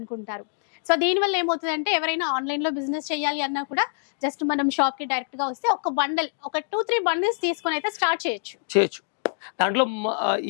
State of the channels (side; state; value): right; silent; 62 dB below the other